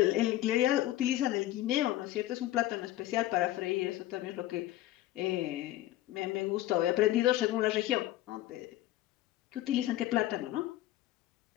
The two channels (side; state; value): right; quieter; 15.0 dB